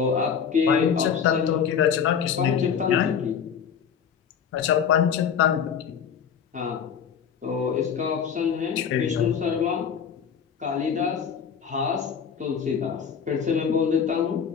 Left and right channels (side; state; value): right; quieter; 7.3 dB